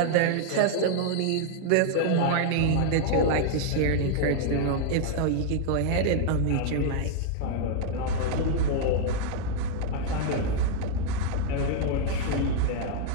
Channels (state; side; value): different; both; correlation 0.00